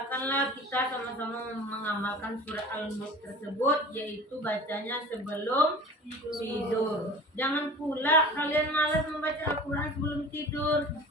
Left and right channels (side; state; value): both; normal; correlation 0.40